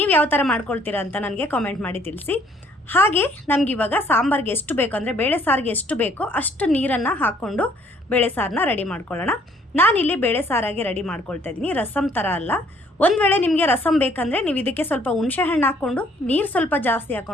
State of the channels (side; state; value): both; normal; correlation 0.62